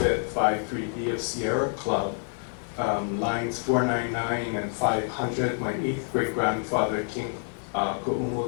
53D of Sierra Club, lines 499 and 500. My 8th great-grandfather, King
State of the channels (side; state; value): right; silent; 56 dB below the other